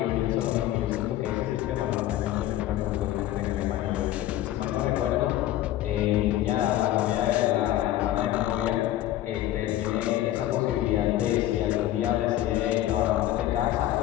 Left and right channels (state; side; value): quieter; right; 13.7 dB